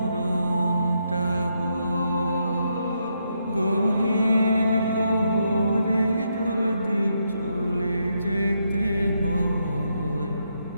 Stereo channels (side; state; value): both; inverted; correlation -0.79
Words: হয়। গহীন কবরে যদি চলে যেতে হয়,